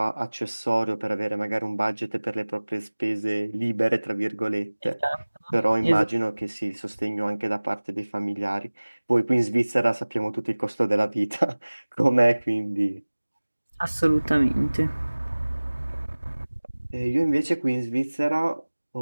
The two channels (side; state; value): both; inverted; correlation -1.00